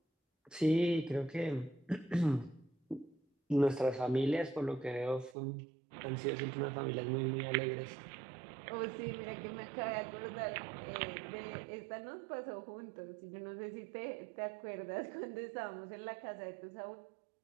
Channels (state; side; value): drops out; left; at 5.4 s